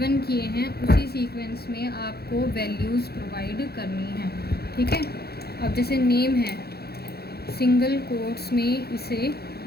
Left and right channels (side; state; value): right; late; 0.46 ms